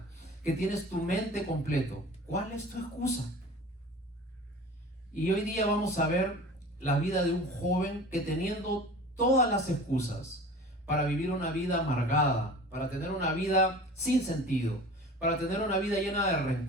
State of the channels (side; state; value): both; normal; correlation 0.40